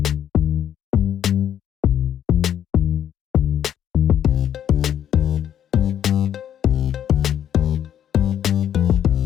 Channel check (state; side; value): quieter; right; 10.0 dB